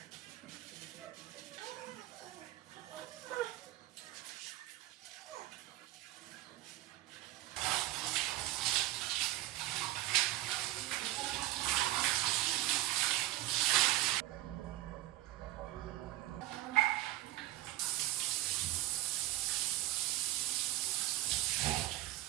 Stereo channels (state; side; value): quieter; left; 16.2 dB